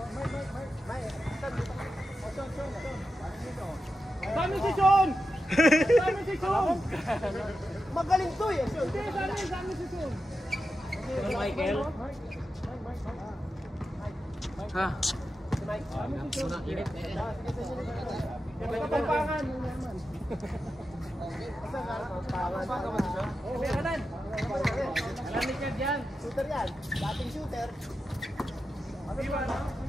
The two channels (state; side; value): normal; both; correlation 0.90